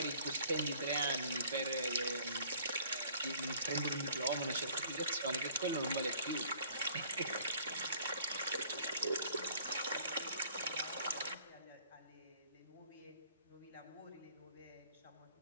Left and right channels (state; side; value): inverted; both; correlation -0.56